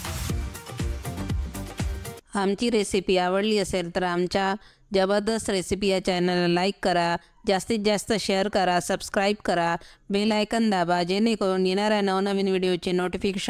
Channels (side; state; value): both; identical; correlation 1.00